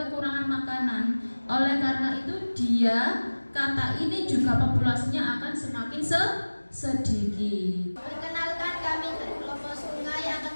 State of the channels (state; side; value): inverted; both; correlation -1.00